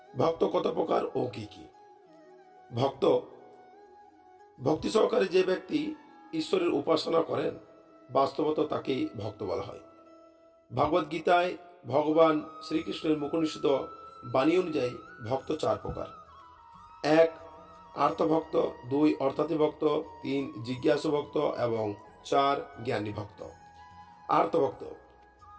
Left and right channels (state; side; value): identical; both; correlation 1.00